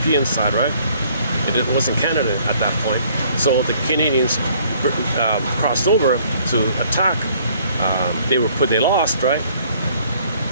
side, right? It wasn't Canada at that point. So the Canadians crossed over to attack. They lost, right?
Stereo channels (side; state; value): both; inverted; correlation -0.60